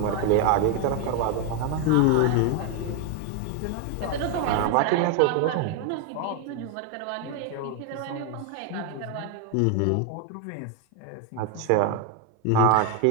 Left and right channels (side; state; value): both; different; correlation 0.01